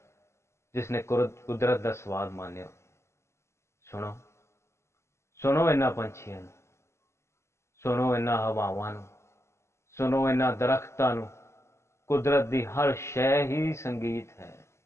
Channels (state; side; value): late; right; 0.13 ms